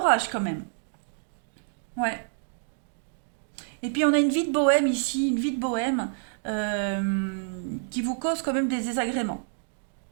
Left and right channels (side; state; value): left; silent; digital silence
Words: quand même. Ouais. Et puis on a une vie de bohème ici, une vie de bohème qui vous cause quand même des désagréments.